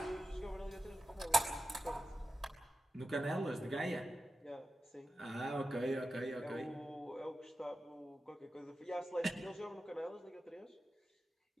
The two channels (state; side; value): normal; both; correlation 0.92